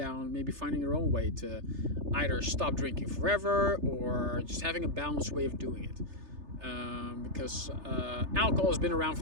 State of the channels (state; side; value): late; left; 3.3 ms